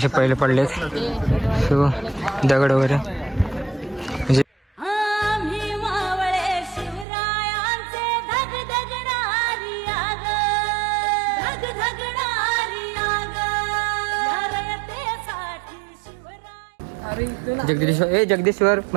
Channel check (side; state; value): left; drops out; at 7.1 s